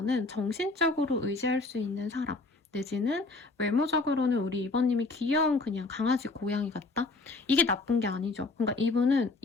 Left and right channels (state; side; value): quieter; right; 3.5 dB